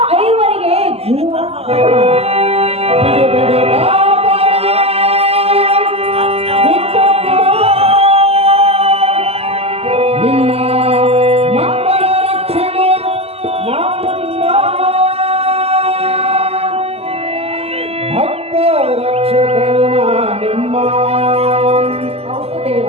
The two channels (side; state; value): left; late; 0.29 ms